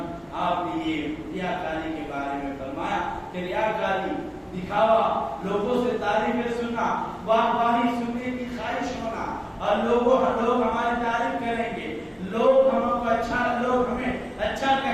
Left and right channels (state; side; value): identical; both; correlation 1.00